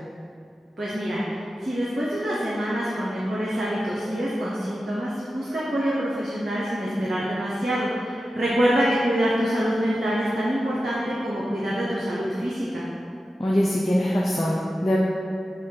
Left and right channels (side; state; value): both; normal; correlation 0.92